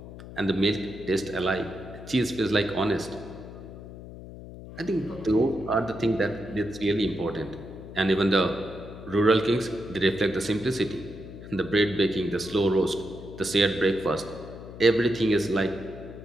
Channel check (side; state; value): left; noise; hum, 14 dB below the sound